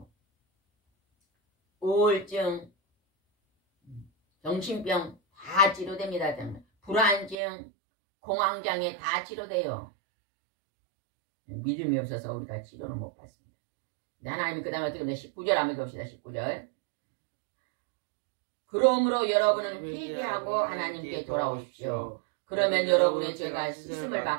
우울증, 정신병 다 치료됩니다. 불안증, 공황장애 다 치료돼요. 믿음이 없어서 우리가 치료를 못 받습니다. 하나님 그 다음에 어떻게 하면 19절 한번 읽읍시다. 19절. 그러므로 여러분은 회개하고 하나님께 돌아오십시오. 그러면 여러분의 죄가 씻음을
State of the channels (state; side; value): drops out; left; at 7.4 s